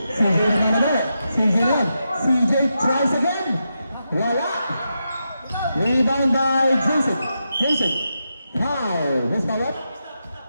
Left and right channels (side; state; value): both; inverted; correlation -0.86